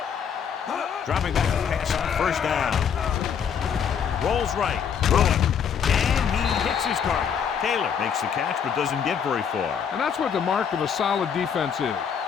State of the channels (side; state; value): right; quieter; 7.5 dB